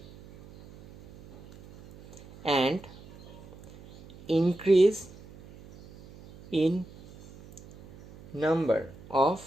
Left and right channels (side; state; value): right; noise; hum, 21 dB below the sound